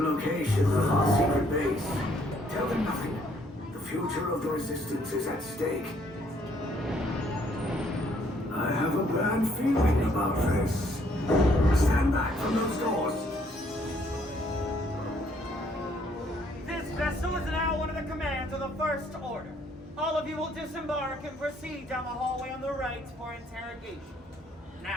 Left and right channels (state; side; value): normal; both; correlation 0.66